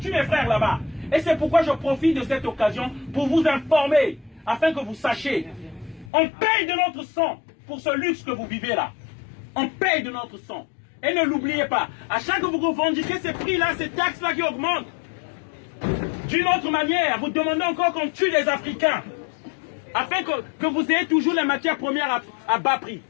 mes frères là-bas? Et c'est pourquoi je profite de cette occasion pour vous informer, afin que vous sachiez. On paye de notre sang pour ce luxe que vous vivez là. On paye de notre sang. Et ne l'oubliez pas, à chaque fois que vous revendiquez ces prix-là, ces taxes-là qui augmentent, d'une autre manière, vous demandez encore qu'on tue les Africains, afin que vous ayez toujours les matières premières à bas prix.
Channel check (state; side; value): drops out; right; at 6.1 s